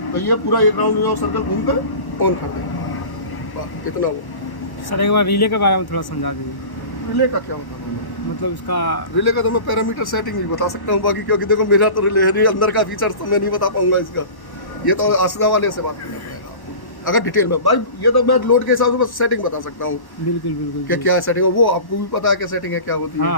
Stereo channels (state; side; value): late; right; 1.1 ms